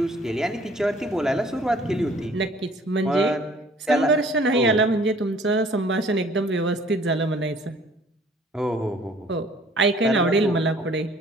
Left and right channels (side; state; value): both; normal; correlation 0.55